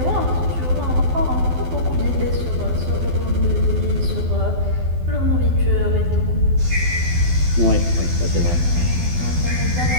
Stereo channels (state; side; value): late; left; 12 ms